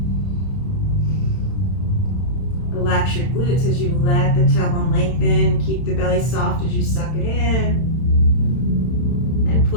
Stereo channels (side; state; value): right; late; 31 ms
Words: Relax your glutes as you let the tailbone lengthen. Keep the belly soft as you suck it in. And